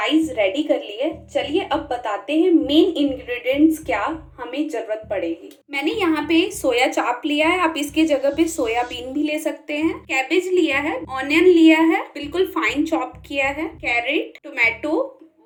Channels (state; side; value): identical; both; correlation 1.00